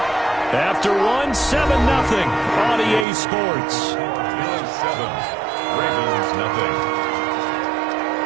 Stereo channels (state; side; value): drops out; left; at 3.1 s